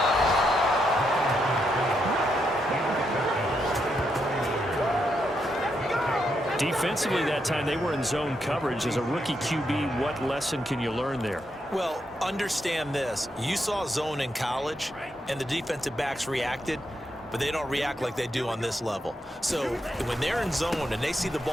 Defensively that time, they were in zone coverage. As a rookie QB, what lesson can you learn there? Well, understand this. You saw zone in college, and the defensive backs reacted, but they don't react like they do on this level. So when they're in zone and they see the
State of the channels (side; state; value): both; normal; correlation 0.81